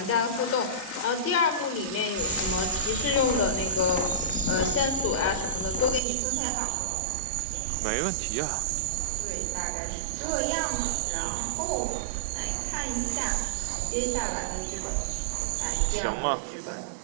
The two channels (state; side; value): drops out; left; at 6.0 s